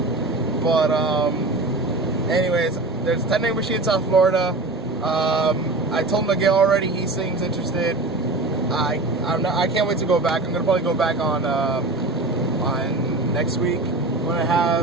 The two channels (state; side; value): quieter; left; 3.0 dB